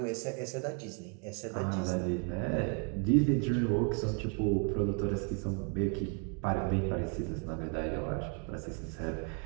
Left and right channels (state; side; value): quieter; left; 36.7 dB